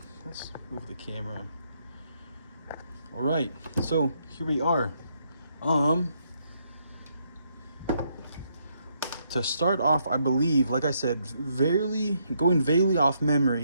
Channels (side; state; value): both; inverted; correlation -0.75